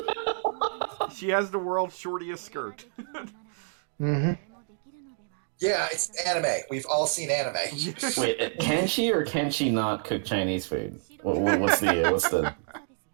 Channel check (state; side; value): silent; left; digital silence